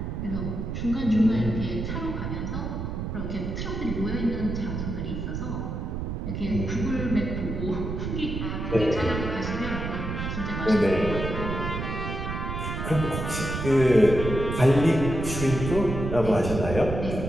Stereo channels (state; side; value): noise; right; rumble, 4 dB below the sound